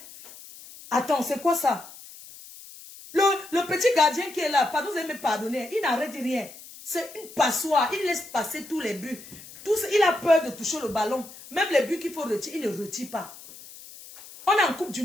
Attends, c'est quoi ça? Le petit gardien qui est là, pardon, vous allez me pardonner, il n'arrête rien. C'est une passoire. Il laisse passer tous les buts. Il a peur de toucher le ballon. Même les buts qu'il faut retirer, il ne retire pas. On est en Coupe du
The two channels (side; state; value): left; noise; hiss, 18 dB below the sound